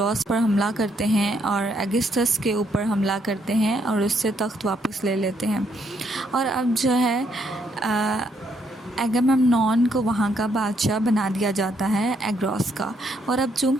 पर हमला करते हैं और एगिस्थस के ऊपर हमला करते हैं और उससे तख्त वापस ले लेते हैं। और अब जो है एगामेम्नॉन को वहाँ का बादशाह बना दिया जाता है, एग्रोस का। और अब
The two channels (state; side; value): normal; both; correlation 0.73